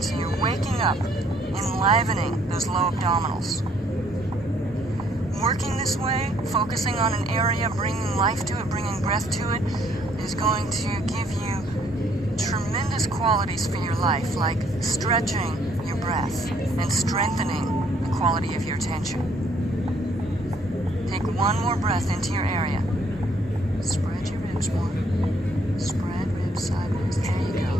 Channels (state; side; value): normal; both; correlation 0.65